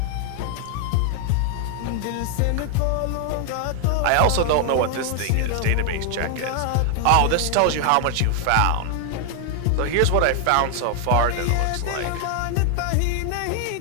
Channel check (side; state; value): both; different; correlation 0.00